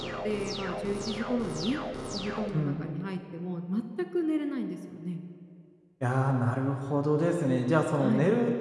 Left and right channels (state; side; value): identical; both; correlation 1.00